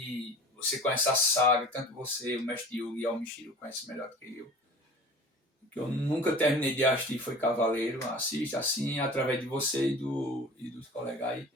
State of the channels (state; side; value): normal; both; correlation 0.41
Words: você conhece a saga, tanto você, o Mestre Yugi e o Almishiro conhecem melhor do que eu. Que eu nunca terminei de assistir foi Cavaleiro. Assiste assim, através de você e dos colegas aí.